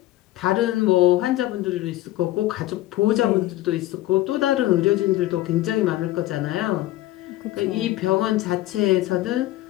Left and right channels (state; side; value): quieter; right; 15.9 dB